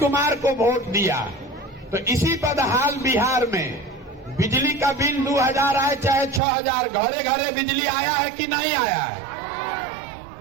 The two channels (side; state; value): left; drops out; at 6.4 s